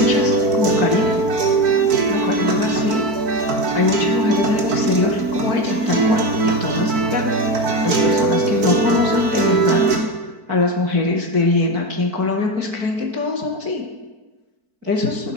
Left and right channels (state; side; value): late; left; 4.5 ms